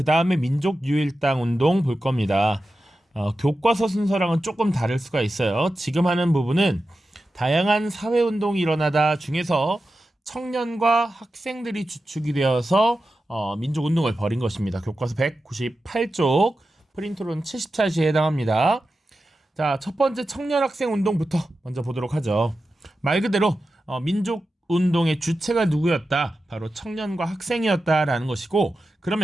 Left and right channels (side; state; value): both; normal; correlation 0.92